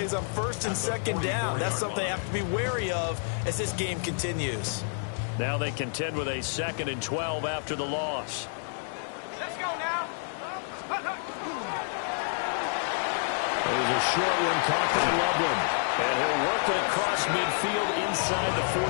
on 1st and 2nd down. That's something they have to be wary of as this game continues. Now they contend with a 2nd and 12 after the loss. Let's go now. There's a short one caught by Loveland. And he'll work it across midfield inside the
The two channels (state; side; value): silent; right; digital silence